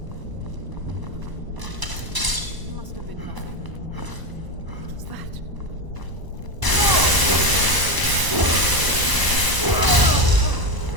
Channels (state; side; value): late; left; 1.0 ms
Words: Must have been nothing. What's that?